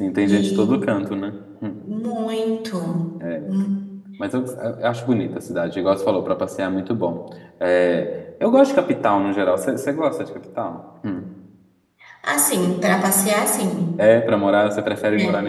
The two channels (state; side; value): identical; both; correlation 1.00